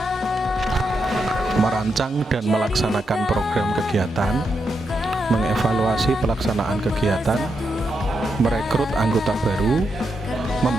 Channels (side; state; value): both; normal; correlation 0.83